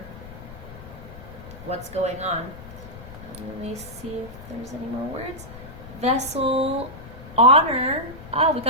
what's going on. Let me see if there's any more words. Vessel, honor. Oh, we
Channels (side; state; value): left; noise; rumble, 15 dB below the sound